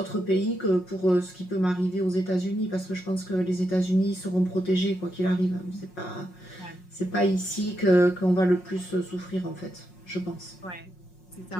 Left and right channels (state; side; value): late; right; 5.5 ms